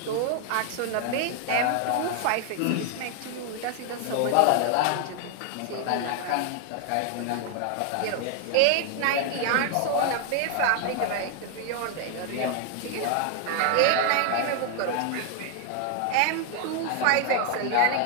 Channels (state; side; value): different; both; correlation 0.01